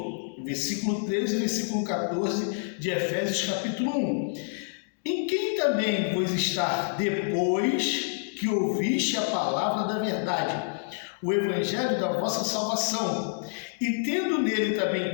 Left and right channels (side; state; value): right; silent; digital silence